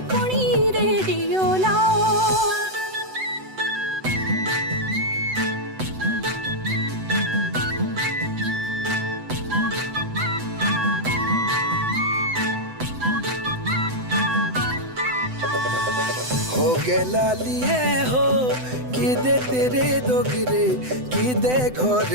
कुणी रेडियो लाओ हो गे लालिए हो कि दे तेरे दोगरे कि दे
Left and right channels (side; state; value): left; late; 7.9 ms